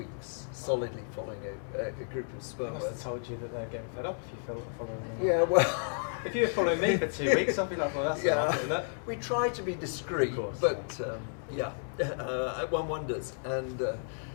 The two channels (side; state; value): right; silent; digital silence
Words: solidly following a group of I sperm must have whales. told you that they're getting fed up if you following them. Yeah, well, If you were following me for 2 weeks, I'd be like, well, that's enough, isn't it? we try to be discreet, Of course, but one wonders. And